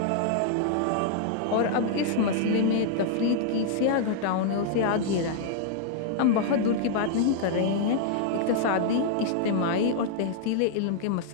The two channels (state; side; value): different; both; correlation -0.01